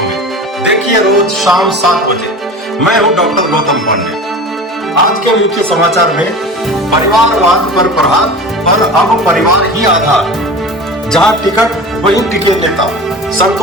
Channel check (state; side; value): normal; both; correlation 0.34